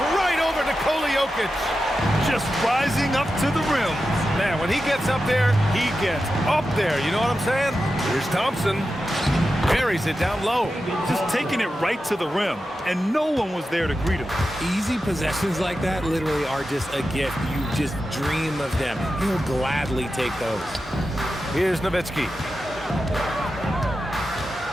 right over Nikola Jokic. Just rising up to the rim. Man, when he gets up there, he gets up there. You know what I'm saying? Here's Thompson. Buries it down low. Just taking it right to the rim, and no one was there to greet him. Easy possessions like that literally are just a gift. You just dream of them. He'll gladly take those. Here's Nowitzki.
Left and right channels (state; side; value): normal; both; correlation 0.91